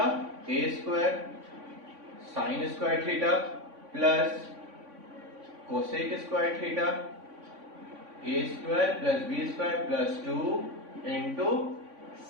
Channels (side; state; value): left; late; 3.5 ms